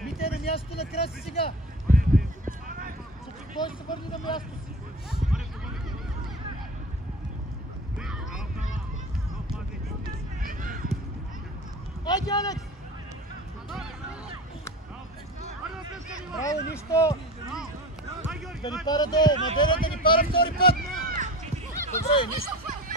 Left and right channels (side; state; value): both; normal; correlation 0.33